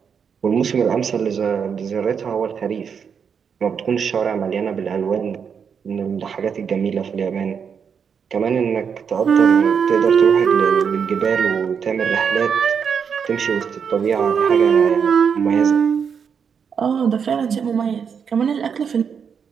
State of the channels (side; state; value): left; quieter; 6.8 dB